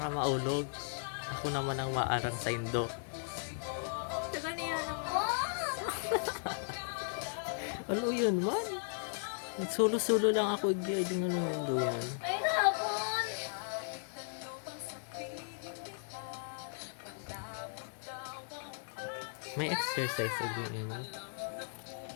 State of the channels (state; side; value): silent; right; digital silence